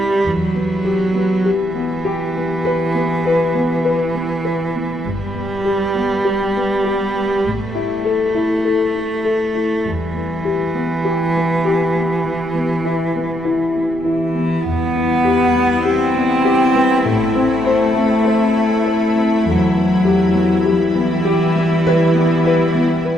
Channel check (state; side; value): noise; left; rumble, 22 dB below the sound